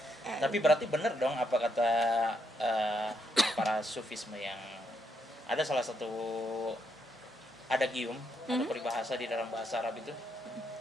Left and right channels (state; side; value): normal; both; correlation 0.78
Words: Tapi berarti bener dong apa kata para sufisme yang ada salah satu adagium atau peribahasa di dalam bahasa Arab itu.